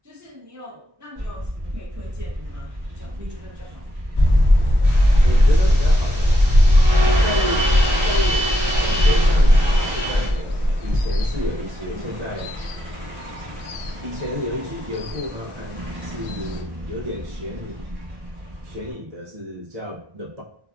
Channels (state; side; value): late; left; 1.2 ms